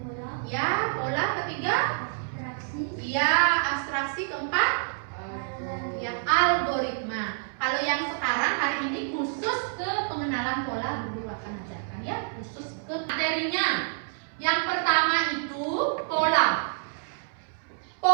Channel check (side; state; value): left; silent; 59 dB below the other